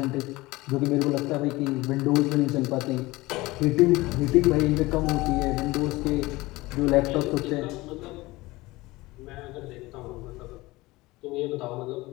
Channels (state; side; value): quieter; right; 20.5 dB